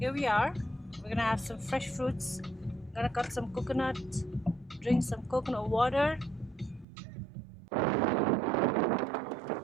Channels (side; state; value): left; drops out; at 6.9 s